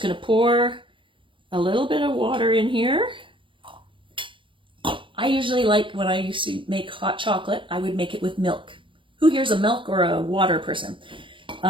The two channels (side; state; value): left; late; 0.25 ms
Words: going to pour a little bit of water in here. I usually like, when I used to make hot chocolate, I would make it with milk. Who here's a milk or a water person?